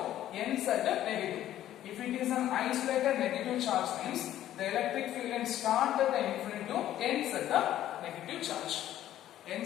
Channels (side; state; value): right; quieter; 12.5 dB